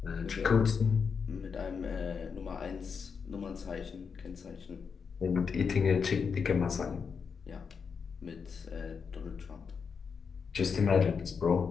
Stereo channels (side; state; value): right; quieter; 6.0 dB